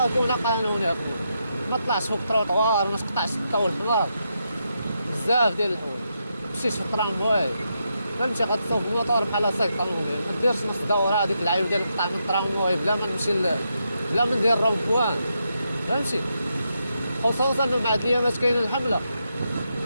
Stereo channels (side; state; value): both; inverted; correlation -0.83